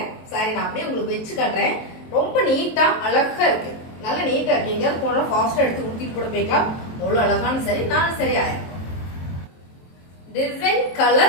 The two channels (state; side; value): late; right; 23 ms